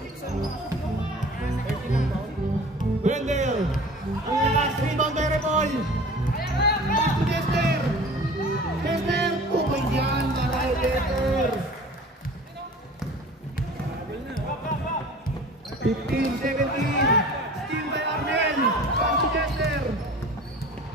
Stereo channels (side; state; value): both; normal; correlation 0.42